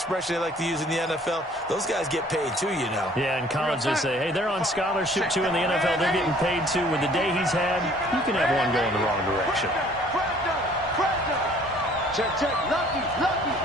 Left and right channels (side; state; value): both; normal; correlation 0.56